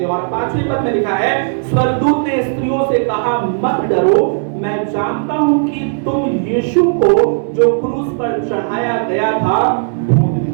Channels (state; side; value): silent; left; 62 dB below the other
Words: हो। और 5वें पद में लिखा है स्वर्गदूत ने स्त्रियों से कहा, मत डरो, मैं जानता हूं कि तुम यीशु को जो क्रूस पर चढ़ाया गया था